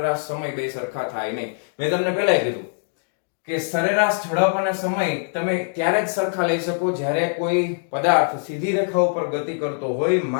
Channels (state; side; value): silent; right; digital silence